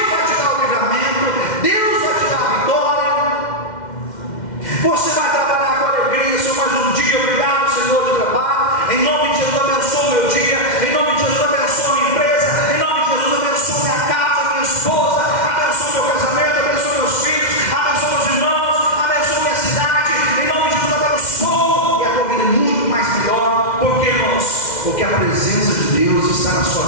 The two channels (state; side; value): late; right; 2.1 ms